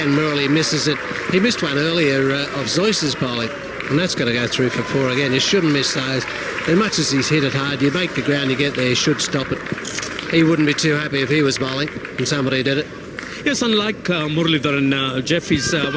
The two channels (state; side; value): identical; both; correlation 1.00